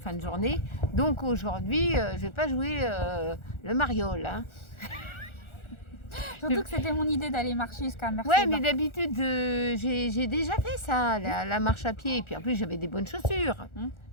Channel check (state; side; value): late; right; 1.4 ms